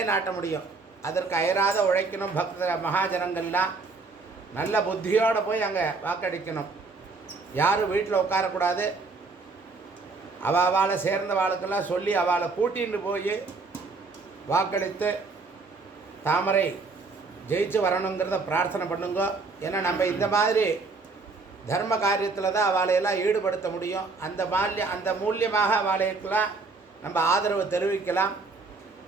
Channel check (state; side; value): quieter; left; 4.0 dB